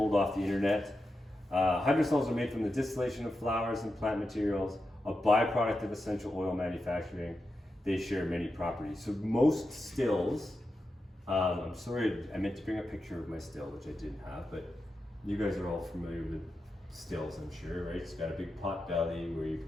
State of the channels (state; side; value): normal; both; correlation 0.89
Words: off the internet. Hydrosols are made from the distillation of flowers and plant materials, a byproduct of essential oil manufacturing. They share many properties. So most stills, I'm sorry, I meant to bring a picture of my still, which I didn't have, but you guys are all familiar with stills, I'm sure, right? It's got a big pot belly where you